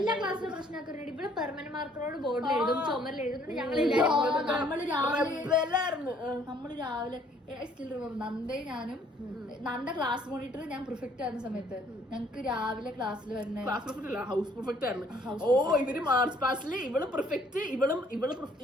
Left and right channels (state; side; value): normal; both; correlation 0.62